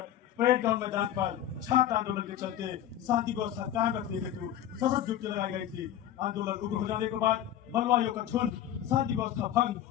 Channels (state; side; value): quieter; right; 11.3 dB